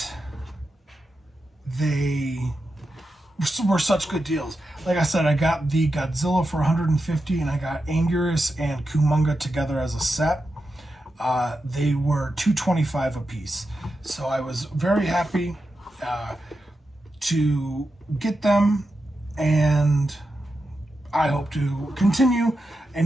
they were such good deals. Like I said, I got the Godzilla for 150, and I got Anguirus and Kumonga together as a set. They were $225 a piece. So I was very happy to get them, and I hope to continue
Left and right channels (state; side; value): normal; both; correlation 0.89